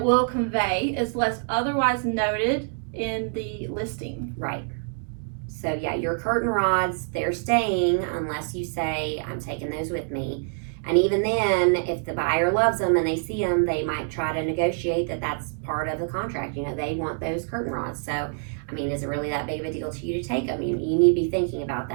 convey unless otherwise noted in the listing. Right. So yeah, your curtain rods, they're staying unless you say, I'm taking those with me. And even then, if the buyer loves them and they see them, they might try to negotiate that that's part of the contract. You know, they want those curtain rods. So, I mean, is it really that big of a deal to you to take them? You need to be thinking about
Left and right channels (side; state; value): left; silent; 61 dB below the other